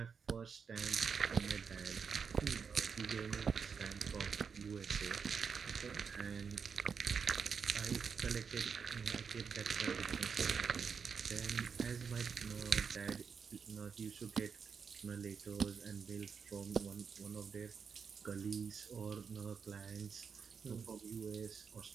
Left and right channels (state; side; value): quieter; left; 6.1 dB